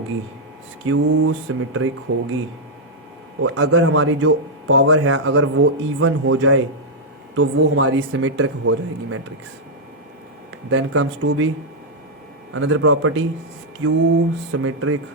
होगी। और अगर हमारी जो पावर है अगर वो इवन हो जाए तो वो हमारी सिमेट्रिक हो जाएगी matrix. Then comes to be another property, skew symmetric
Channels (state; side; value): normal; both; correlation -0.04